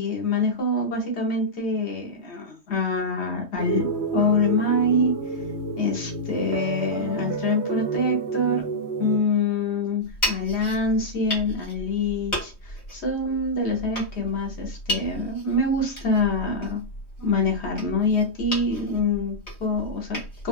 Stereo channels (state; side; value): late; right; 3.2 ms